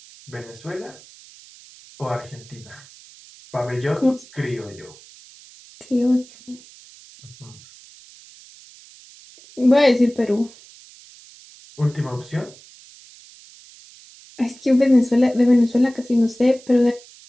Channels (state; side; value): noise; right; hiss, 23 dB below the sound